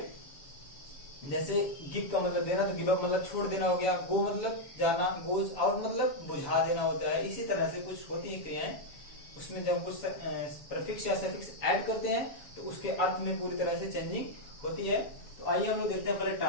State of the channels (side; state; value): right; late; 7.0 ms